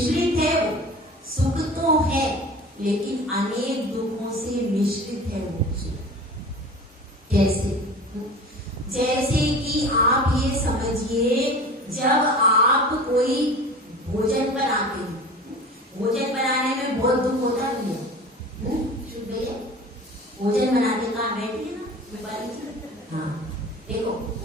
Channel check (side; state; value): both; normal; correlation 0.38